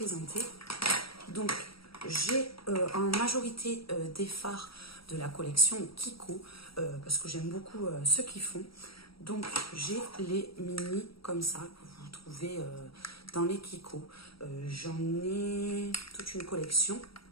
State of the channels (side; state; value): right; late; 0.75 ms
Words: Donc, j'ai en majorité des fards de la collection Kiko, parce que j'aime beaucoup ceux qui font. Donc, j'ai les mini comme ça, que vous trouvez dans les Kiko. J'en ai toute une collection.